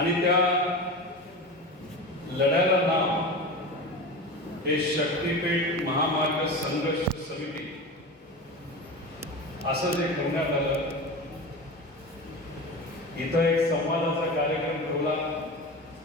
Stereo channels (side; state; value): both; normal; correlation 0.28